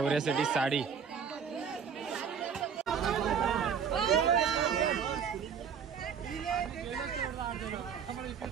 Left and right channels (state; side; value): quieter; left; 7.0 dB